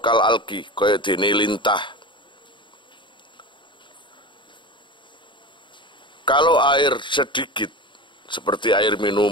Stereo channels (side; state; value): right; late; 0.23 ms